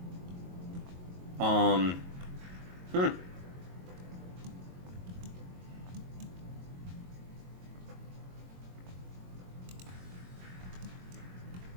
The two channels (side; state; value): left; late; 22 ms